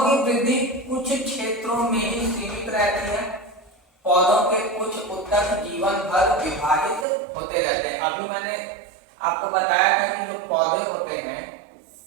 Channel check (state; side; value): drops out; left; at 7.1 s